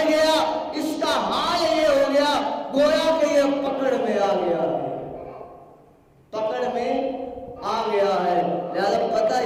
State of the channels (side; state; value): both; identical; correlation 1.00